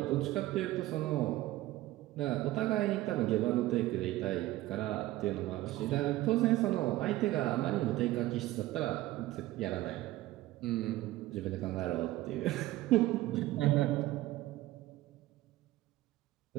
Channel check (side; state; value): left; quieter; 16.6 dB